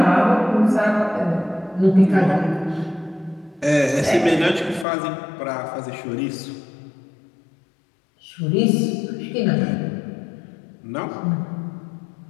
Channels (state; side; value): drops out; right; at 4.9 s